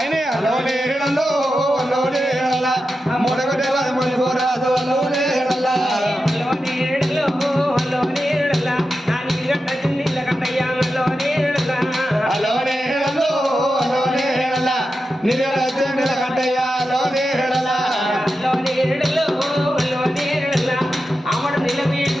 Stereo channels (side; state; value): both; normal; correlation 0.90